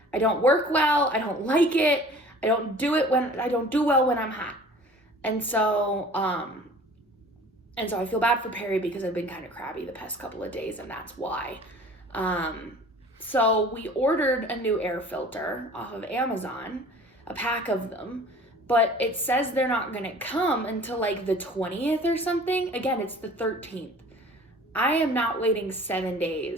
work well. I don't like it. I don't do well when I'm hot. And so I feel bad for Perry because I've been kind of crabby the past couple of days, and that's why. So we ordered a new air filter off of Amazon, a pack of them, but it says they're not going to come until like the 20th or something. Again, it's the 13th. I am not waiting 7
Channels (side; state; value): both; normal; correlation 0.46